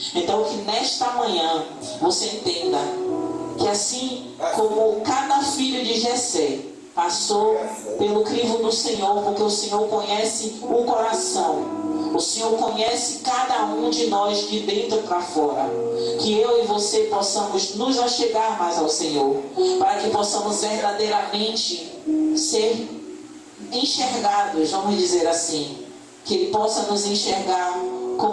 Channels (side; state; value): both; identical; correlation 1.00